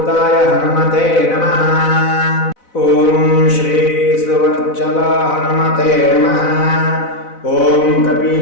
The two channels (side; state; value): right; late; 4.0 ms